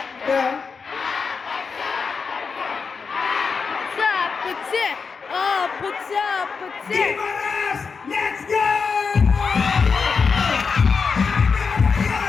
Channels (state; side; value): quieter; right; 5.3 dB